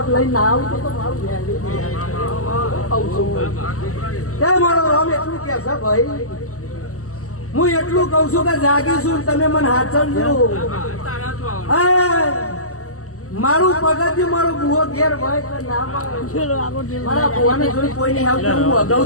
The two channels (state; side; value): late; right; 0.65 ms